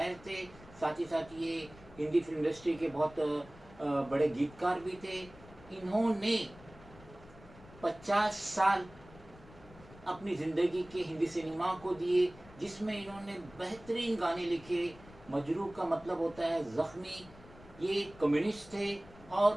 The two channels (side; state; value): left; noise; rumble, 21 dB below the sound